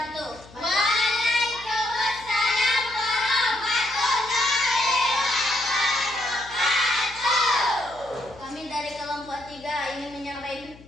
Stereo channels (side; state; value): left; noise; hum, 22 dB below the sound